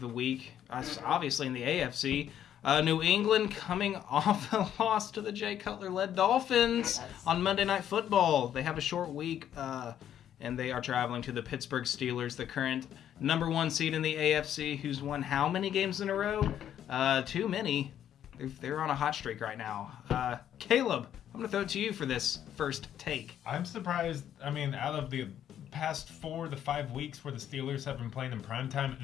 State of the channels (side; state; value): right; quieter; 10.3 dB